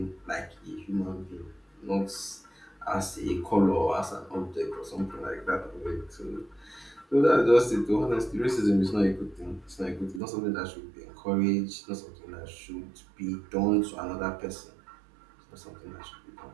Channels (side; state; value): left; drops out; at 10.2 s